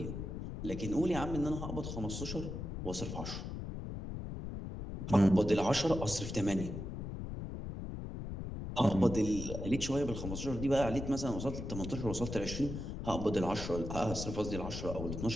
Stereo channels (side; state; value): left; noise; rumble, 6 dB below the sound